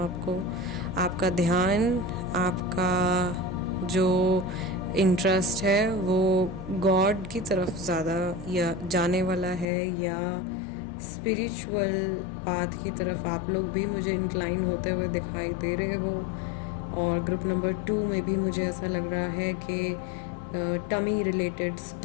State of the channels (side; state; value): right; drops out; at 9.7 s